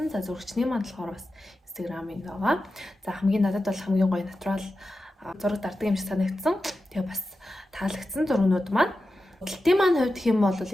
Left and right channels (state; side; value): normal; both; correlation 0.92